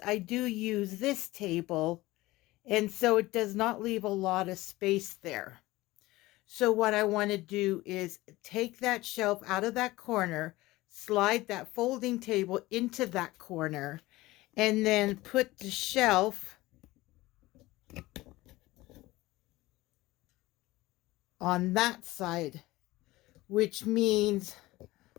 I do use this table, and so it does not leave a lot of space there. So what I want to do is take that shelf out of that corner, slide that folding table into that corner, and then put the shelf on that side, which means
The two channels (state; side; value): quieter; right; 18.9 dB